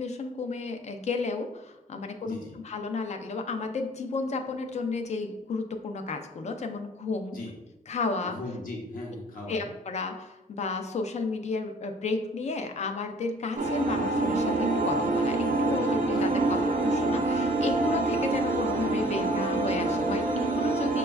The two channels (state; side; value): normal; both; correlation 0.53